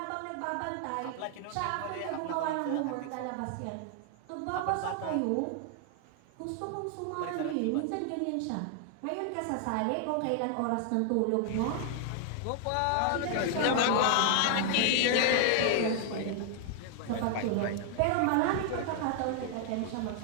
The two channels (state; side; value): different; both; correlation 0.00